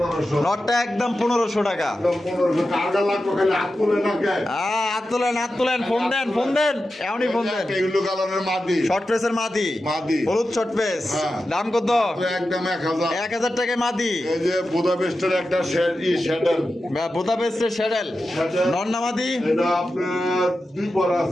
নটটা একদম 1500 টাকা। একদম 1500 টাকা লাগবে, খালি হাত তুলে না কে হাত তোলেন, ফোন দেন এমনই ফোন দেন। এগুলো কালারের মাদি, শর্ট পেসের মাদি, হলুদ শর্ট পেস, দাম কত? একদম 1000, 1000 টাকায় মাদি। এই যে বুদাপেস্টের একটা শ্যাডেল, বুদাপেস্টের শ্যাডেল নন্না মাদি, এটা আপনার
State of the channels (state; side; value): normal; both; correlation 0.92